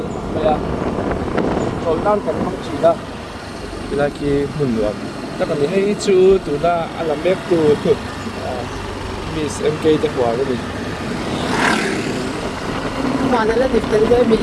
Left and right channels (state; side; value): identical; both; correlation 1.00